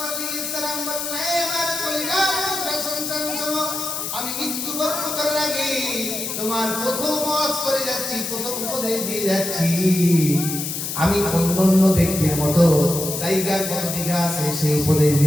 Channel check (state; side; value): noise; left; hiss, 4 dB below the sound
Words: আলাইহিস সালাম বললেন, আমার কলিজার টুকরা সন্তান শোনো, আমি মৃত্যুবরণ করার আগে তোমার প্রথম ওয়াজ করে যাচ্ছি, প্রথম উপদেশ দিয়ে যাচ্ছি। আমি অন্যান্য ব্যক্তির মতো জায়গা কত বিঘা আছে সেই উপদেশ